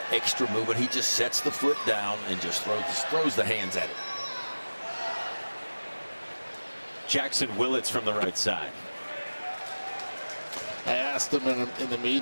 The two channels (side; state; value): both; inverted; correlation -1.00